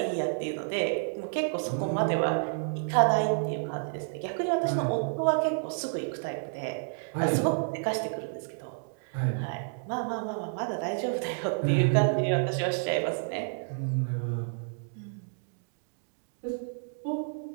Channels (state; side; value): silent; left; digital silence